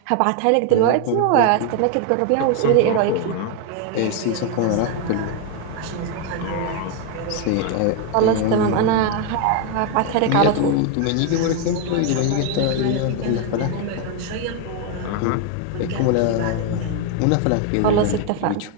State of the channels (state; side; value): different; both; correlation 0.01